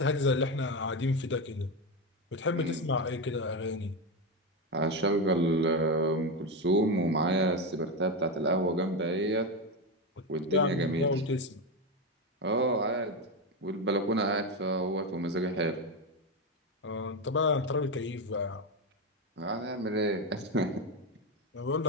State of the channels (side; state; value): both; normal; correlation 0.12